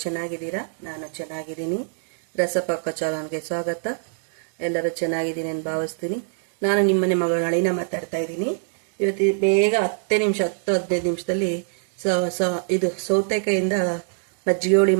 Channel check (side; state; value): left; silent; digital silence